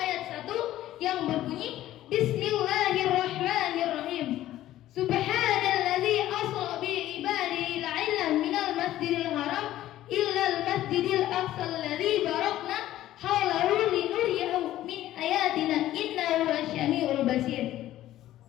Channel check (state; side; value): quieter; right; 13.9 dB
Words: 1 yang berbunyi, Bismillahirrahmanirrahim. Subhanalladzi asra bi ibadihi la'ilan minal masjidil haram illal masjidil aqsa alladzi barakna haulahu linuriyahu min ayatina innahu wasyami'ul basir.